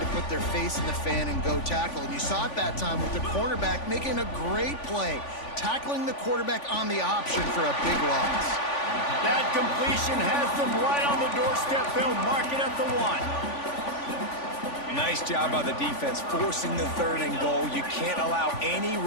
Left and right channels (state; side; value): late; right; 3.5 ms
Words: put their face in the fan and go tackle. And you saw it that time with the cornerback making a great play, tackling the quarterback on the option for a big loss. That completion has them right on the doorstep. They'll mark it at the 1. Nice job by the defense forcing the 3rd and goal. You can't allow any